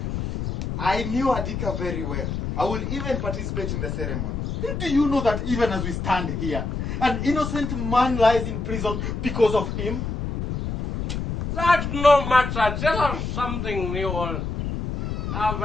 I knew Adika very well. I will even participate in the ceremony. Do you know that even as we stand here, an innocent man lies in prison because of him? That's no matter. Tell us something new.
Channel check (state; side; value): noise; left; rumble, 4 dB below the sound